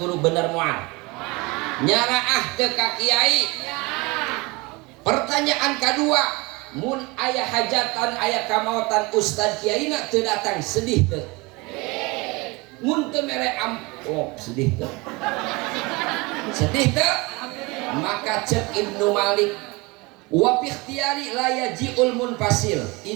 bener mual nyaraah teka kiai pertanyaan kedua mun aya hajatan aya kamautan ustad kiai nak teu datang sedih teu mun teu mere amplop sedih teu maka cek Ibnu Malik wa fi ikhtiyari la yaji'ul munfasil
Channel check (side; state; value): left; quieter; 25.2 dB